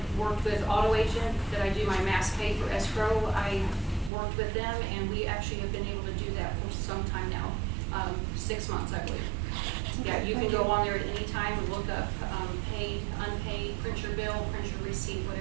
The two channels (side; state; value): left; drops out; at 4.1 s